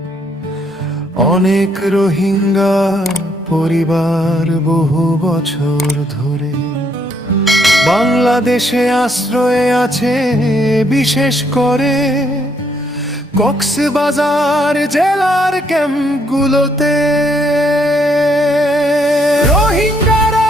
অনেক রোহিঙ্গা পরিবার বহু বছর ধরে বাংলাদেশে আশ্রয়ে আছে, বিশেষ করে কক্সবাজার জেলার ক্যাম্পগুলোতে। রোহিঙ্গারা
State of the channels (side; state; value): both; normal; correlation 0.71